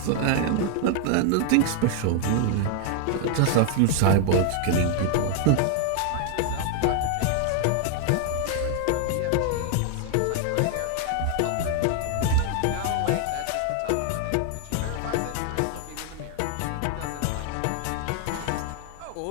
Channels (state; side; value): different; both; correlation 0.00